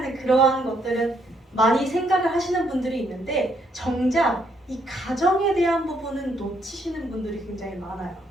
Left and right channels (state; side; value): normal; both; correlation 0.72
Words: 그러한 것들은 많이 생각을 하시는 분들이 있는데, 정작 이 가정에 대한 부분은 놓치시는 분들이 굉장히 많아요.